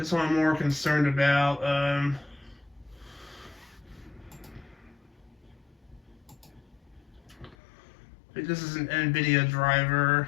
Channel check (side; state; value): right; drops out; at 7.6 s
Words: one I'm more concerned about. This is an NVIDIA driver.